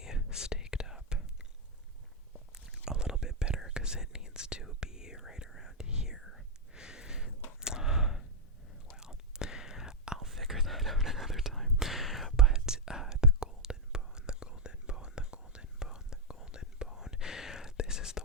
staked up a little bit better because it needs to be right around here. Well, I'll figure that out another time. But the golden bone, the golden bone, the golden bone, the golden bone. This is the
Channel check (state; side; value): normal; both; correlation -0.03